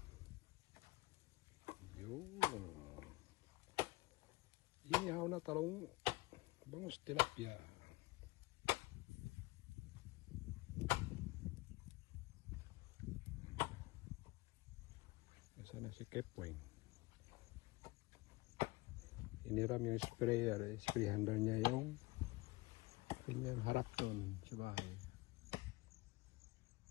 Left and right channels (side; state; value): right; quieter; 22.4 dB